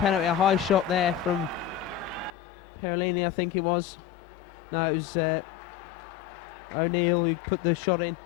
a high shot there from Perolini, I think it was. No, it was O'Neill who put the shot in.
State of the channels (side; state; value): right; drops out; at 2.3 s